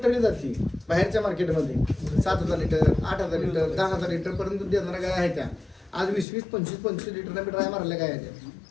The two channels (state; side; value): drops out; right; at 6.2 s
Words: ठरली जाते बाहेरच्या मार्केटमध्ये 7,000 लिटर 8,000 लिटर 10,000 लिटर पर्यंत दूध देणाऱ्या गाय आहेत त्या आज 20-20 25-25 लिटर मी ड्राय मारल्या गाय आहेत